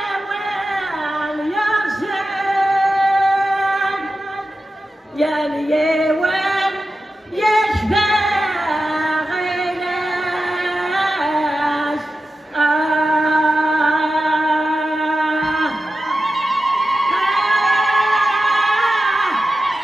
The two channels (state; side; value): normal; both; correlation 0.92